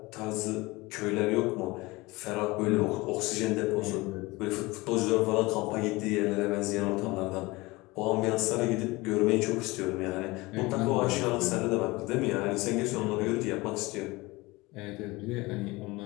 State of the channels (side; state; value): right; quieter; 22.2 dB